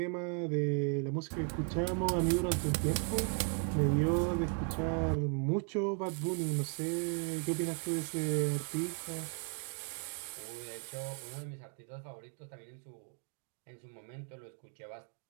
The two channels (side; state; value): left; quieter; 38.3 dB